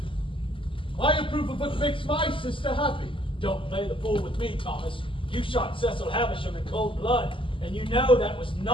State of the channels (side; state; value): right; late; 0.25 ms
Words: I approve of what makes my sister happy. Don't play the fool with me, Thomas. You shot Cecil Havisham in cold blood, and you know that was